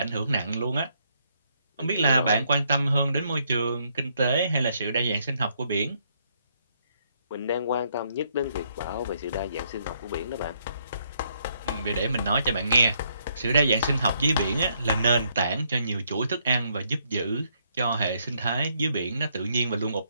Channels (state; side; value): inverted; both; correlation -0.72